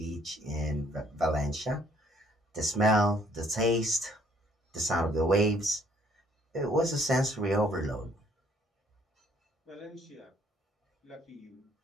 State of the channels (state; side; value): normal; both; correlation 0.64